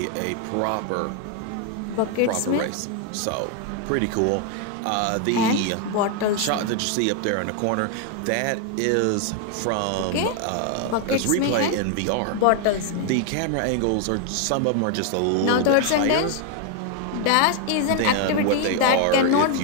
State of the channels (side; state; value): both; different; correlation 0.01